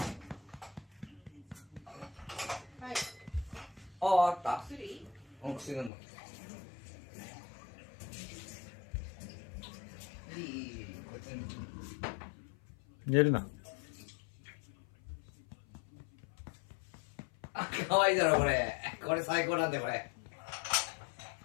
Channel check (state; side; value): drops out; right; at 5.9 s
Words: た。薬飲む。いい、こっちに。寝るな。あ、可愛いだろこれ。これ最高なんだよこれ。